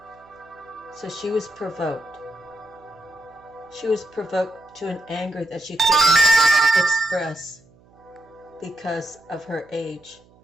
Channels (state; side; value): noise; right; hum, 29 dB below the sound